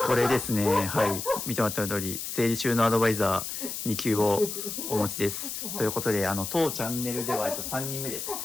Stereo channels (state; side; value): noise; left; hiss, 5 dB below the sound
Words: れですね。はい。見てもらった通り、整理収納アドバイザー2級をお持ちです。ということで、当チャンネルでは3人目です。